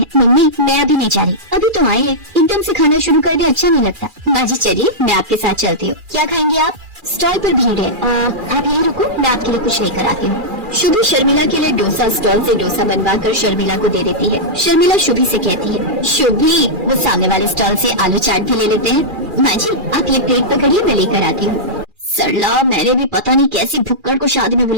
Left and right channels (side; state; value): left; late; 2.4 ms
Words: मम्मी मैं अभी नहीं जा रही, अभी तो आई है, एकदम से खाना शुरू कर दे अच्छा नहीं लगता। माँ जी चलिए मैं आपके साथ चलती हूँ। क्या खाएंगे आप? स्टॉल पर भीड़ है, आप यहीं रुको, मैं आपके लिए कुछ लेकर आती हूँ। शुभी शर्मिला के लिए डोसा स्टॉल से डोसा बनवा कर शर्मिला को दे देती है। शर्मिला शुभी से कहती है, शुभी वो सामने वाले स्टॉल से आलू चाट भी ले लेते हैं। माँ जी आप ये प्लेट पकड़िए, मैं लेकर आती हूँ। सरला मैंने भी पता नहीं कैसी भुक्कड़ को शादी में